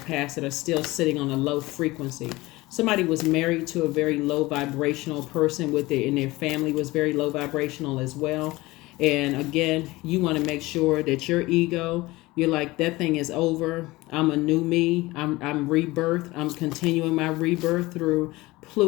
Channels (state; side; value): quieter; right; 20.3 dB